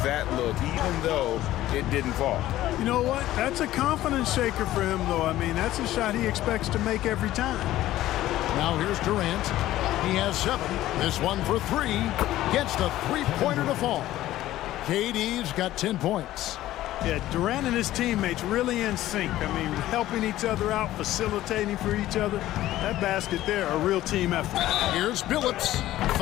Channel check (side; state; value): right; quieter; 14.7 dB